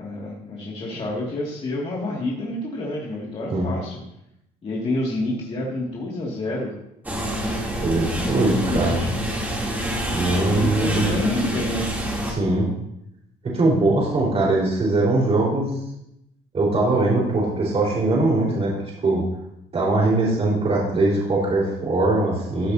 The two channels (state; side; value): normal; both; correlation 0.64